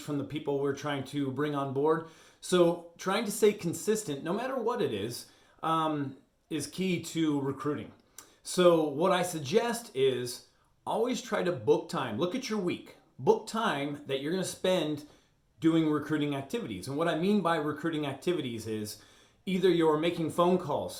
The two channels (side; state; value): both; identical; correlation 1.00